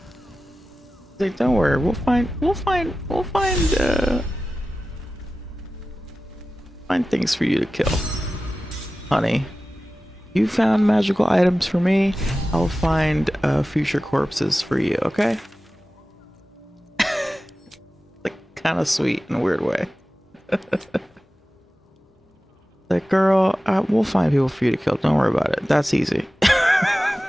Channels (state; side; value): normal; both; correlation 0.95